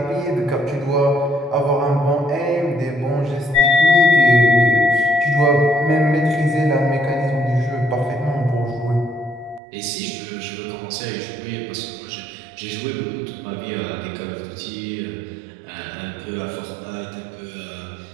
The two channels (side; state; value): left; drops out; at 9.6 s